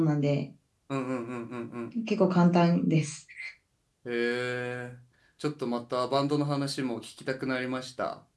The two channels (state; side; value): identical; both; correlation 1.00